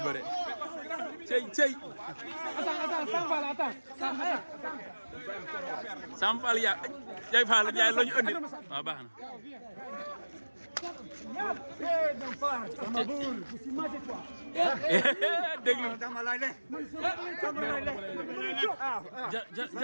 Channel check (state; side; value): inverted; both; correlation -1.00